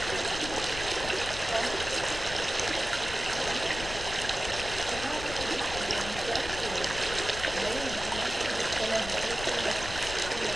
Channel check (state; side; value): noise; left; rumble, 10 dB below the sound